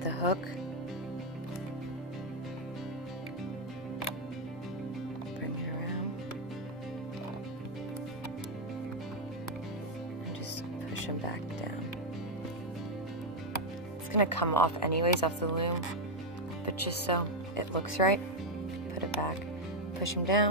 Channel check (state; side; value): normal; both; correlation 0.02